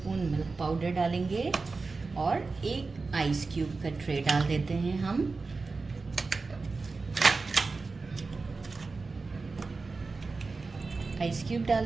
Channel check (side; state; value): left; quieter; 4.0 dB